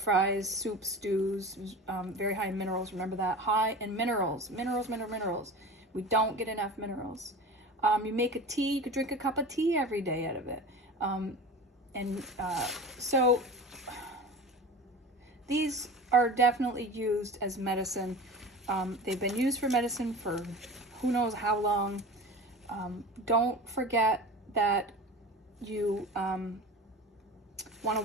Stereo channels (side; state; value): both; normal; correlation 0.34